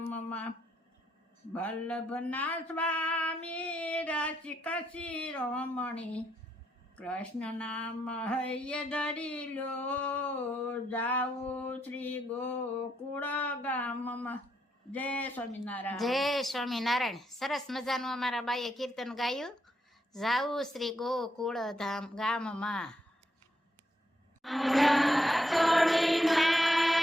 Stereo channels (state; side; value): normal; both; correlation 0.78